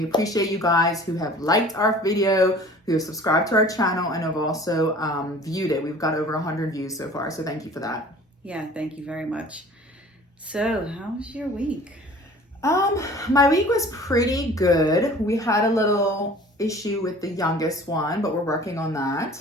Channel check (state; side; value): normal; both; correlation 0.46